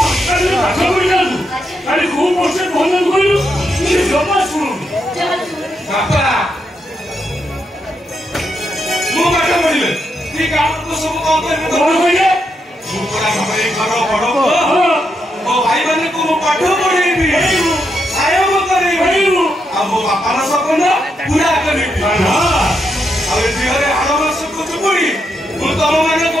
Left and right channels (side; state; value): both; normal; correlation 0.82